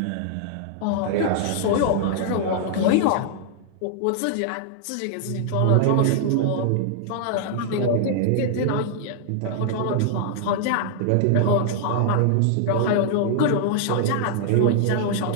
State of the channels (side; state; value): both; different; correlation -0.01